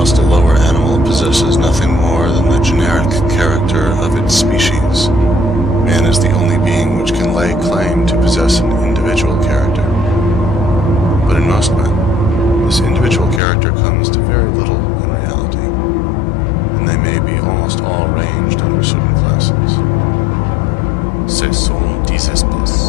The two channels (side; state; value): right; drops out; at 13.4 s